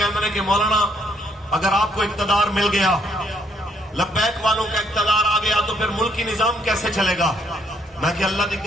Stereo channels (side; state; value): both; normal; correlation 0.69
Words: ہیں کہ مولانا اگر آپ کو اقتدار مل گیا لبیک والوں کا اقتدار آ گیا تو پھر ملکی نظام کیسے چلے گا میں کہ اللہ دی